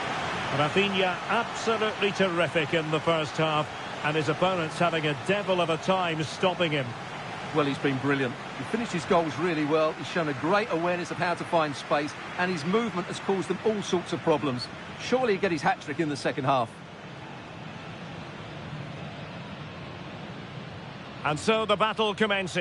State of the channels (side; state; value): both; identical; correlation 1.00